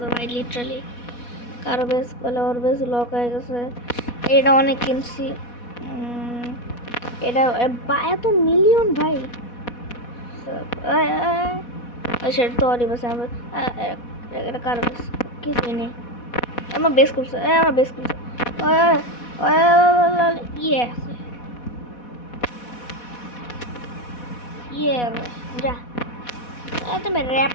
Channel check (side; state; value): right; late; 4.1 ms